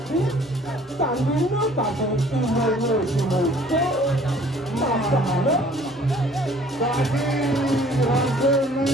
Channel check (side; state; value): both; normal; correlation 0.55